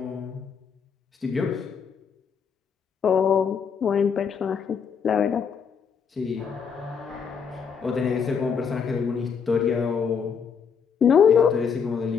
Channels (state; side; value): quieter; right; 6.5 dB